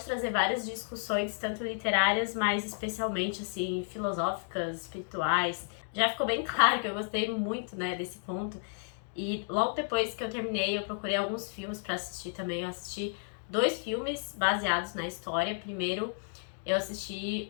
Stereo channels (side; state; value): right; silent; digital silence